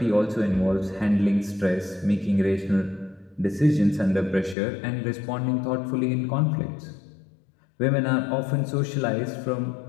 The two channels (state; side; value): drops out; right; at 4.5 s